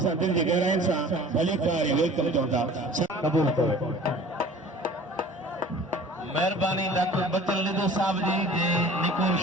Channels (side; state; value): both; normal; correlation 0.46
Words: दिल जी गहराइनि सां भली कारी वेलकम चऊं था क़बूल कयो मेहरबानी डॉक्टर बचल निधो साहब जी जे निको